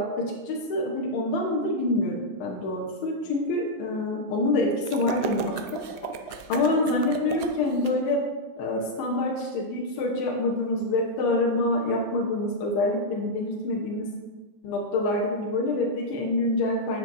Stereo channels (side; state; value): right; late; 15 ms